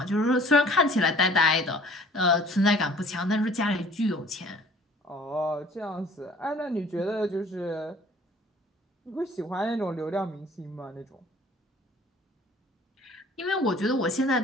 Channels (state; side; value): normal; both; correlation 0.52